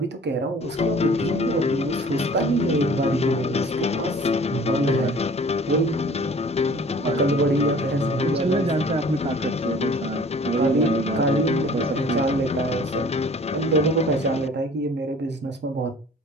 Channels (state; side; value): normal; both; correlation 0.49